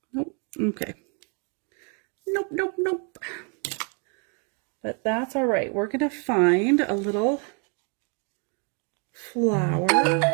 Nope. Okay. Nope, nope, nope. But that's all right. We're going to find a little flower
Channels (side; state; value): left; quieter; 37.7 dB